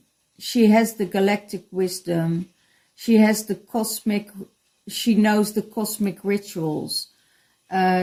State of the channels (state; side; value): identical; both; correlation 1.00